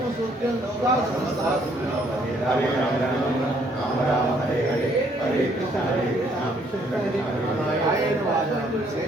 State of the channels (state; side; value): normal; both; correlation 0.66